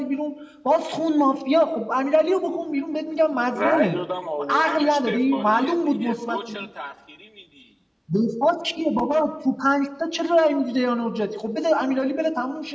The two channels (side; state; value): both; identical; correlation 1.00